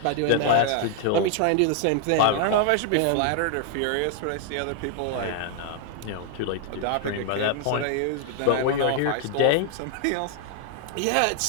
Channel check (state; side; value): different; both; correlation 0.00